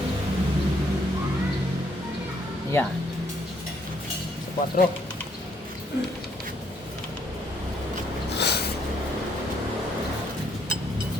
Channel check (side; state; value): both; normal; correlation 0.69